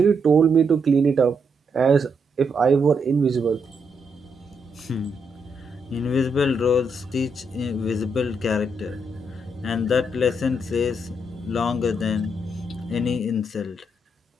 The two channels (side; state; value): both; normal; correlation 0.78